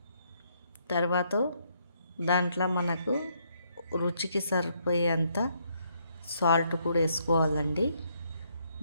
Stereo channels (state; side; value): inverted; both; correlation -0.72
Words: తర్వాత దాంట్లో మనకు రుచికి సరిపోయేంత సాల్ట్ కూడా వేసుకోవాలండి.